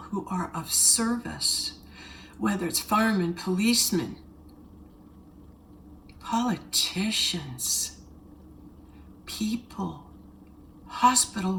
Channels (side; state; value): both; identical; correlation 1.00